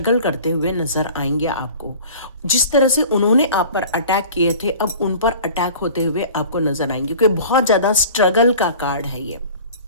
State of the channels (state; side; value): inverted; both; correlation -0.43